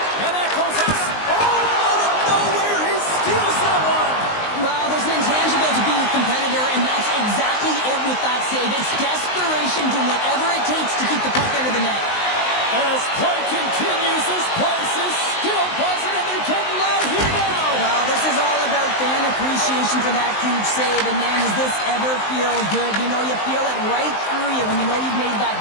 And that goes us. Oh, out of nowhere, he steals that one. Well, there's an intangible to being a competitor, and that's exactly it with that save. It's desperation, doing whatever it takes to keep the puck out of the net. As play continues, this place is still buzzing, and they're getting loud here now. Well, this is all about fan appreciation for that huge save, and man, does this ever feel good. You know, you feel it right through you when you know you've made that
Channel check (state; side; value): late; right; 19 ms